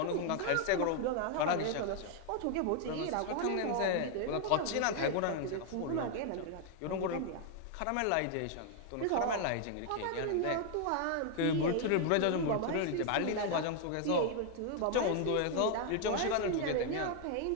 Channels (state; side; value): different; both; correlation 0.00